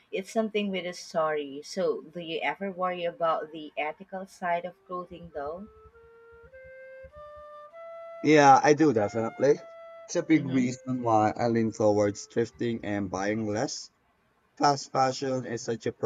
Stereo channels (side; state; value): both; identical; correlation 1.00